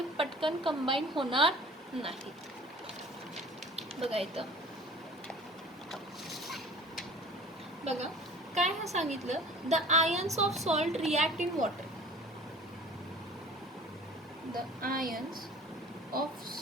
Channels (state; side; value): normal; both; correlation 0.45